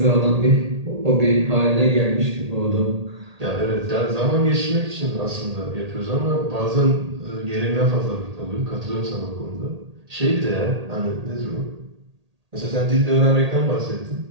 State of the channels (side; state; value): left; late; 1.8 ms